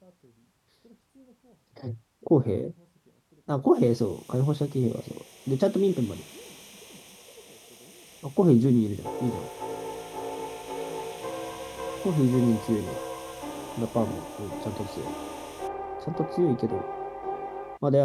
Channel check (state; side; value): identical; both; correlation 1.00